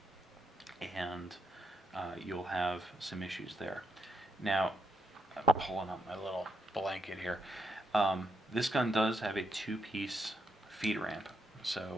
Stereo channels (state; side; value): normal; both; correlation 0.79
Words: and you'll have some issues there. Now, I'm pulling up my little blanket here. This gun does have a 2-piece feed ramp.